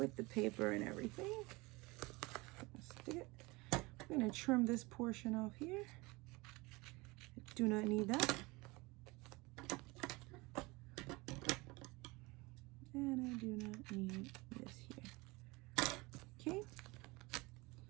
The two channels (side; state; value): left; quieter; 23.7 dB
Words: the paper and everything. Stick it. I'm gonna trim this portion off here. I do not need that. And I do not need this here. Okay.